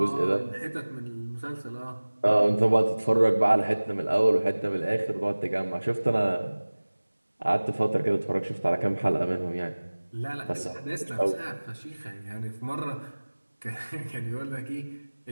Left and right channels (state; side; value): inverted; both; correlation -1.00